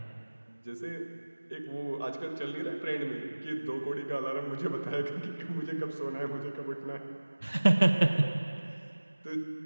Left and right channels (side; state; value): both; inverted; correlation -1.00